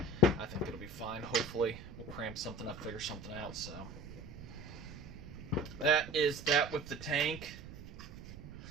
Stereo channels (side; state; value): right; noise; rumble, 13 dB below the sound